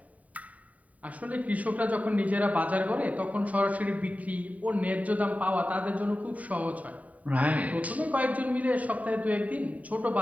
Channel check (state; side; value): late; left; 0.070 ms